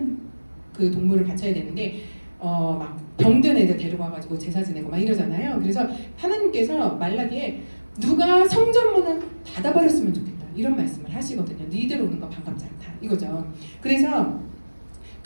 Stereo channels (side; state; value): both; inverted; correlation -1.00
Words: 그 동물을 바쳐야 되는데 막 병든 애들 데려가가지고 제사 지내고 막 이러잖아요. 그래서 하나님께서 말라기에 누가 성전문을 닫아버렸으면 좋겠다 이런 말씀을 하시거든요. 니들 오는 거 반갑지 않다 이거죠. 그래서